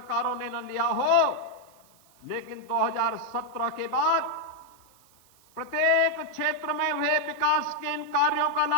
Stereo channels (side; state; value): right; noise; hiss, 30 dB below the sound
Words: ने न लिया हो, लेकिन 2017 के बाद प्रत्येक क्षेत्र में हुए विकास के इन कार्यों का